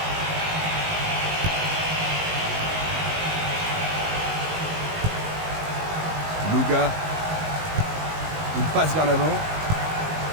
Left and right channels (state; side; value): late; left; 19 ms